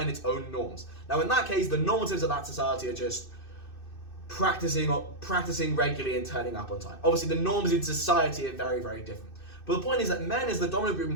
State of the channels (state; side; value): late; right; 2.6 ms